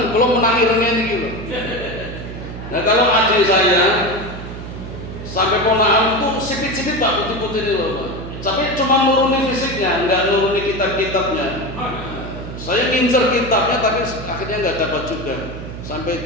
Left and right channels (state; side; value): noise; right; hum, 10 dB below the sound